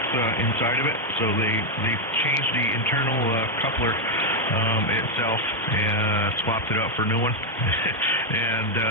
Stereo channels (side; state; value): both; normal; correlation 0.01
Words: inside of it. So they changed the internal coupler itself and swapped it out for a new one, and